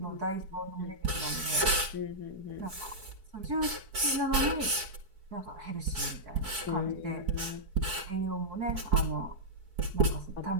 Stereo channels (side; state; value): left; late; 4.6 ms